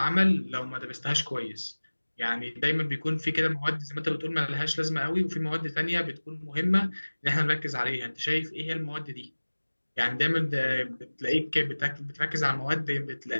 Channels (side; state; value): both; inverted; correlation -1.00